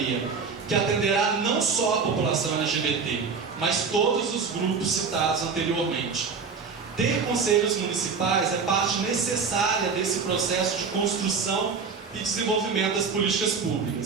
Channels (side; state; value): left; quieter; 5.3 dB